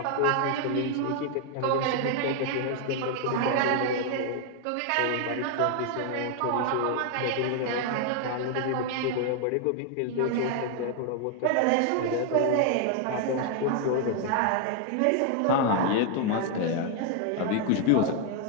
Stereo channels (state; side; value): different; both; correlation 0.00